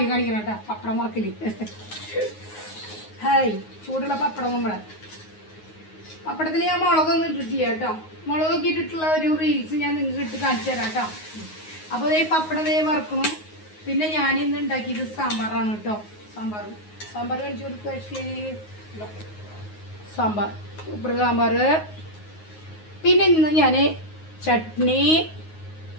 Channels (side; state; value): right; late; 9.5 ms